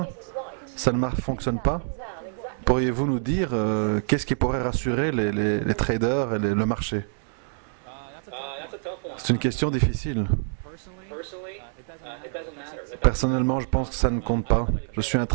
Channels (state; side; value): silent; left; 61 dB below the other